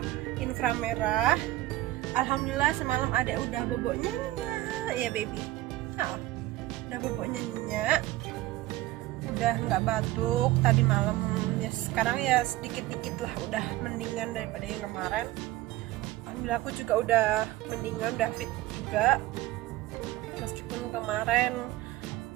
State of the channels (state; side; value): quieter; left; 16.8 dB